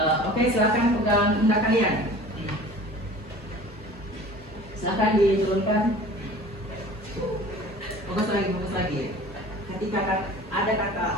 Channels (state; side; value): normal; both; correlation 0.43